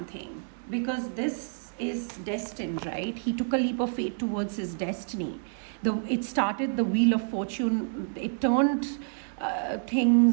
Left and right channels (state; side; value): silent; left; digital silence